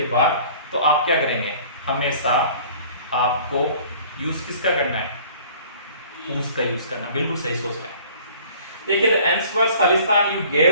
बाद, तो आप क्या करेंगे? हमेशा आपको यूज किसका करना है? हुज का यूज करना। बिल्कुल सही सोच रहे हैं। देखिए द आंसर्स खालिस्तान you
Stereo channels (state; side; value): inverted; both; correlation -0.51